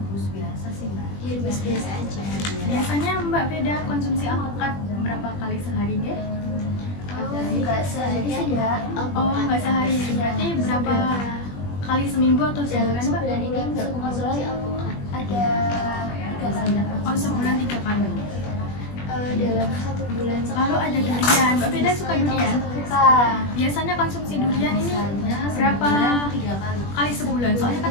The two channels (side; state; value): right; late; 21 ms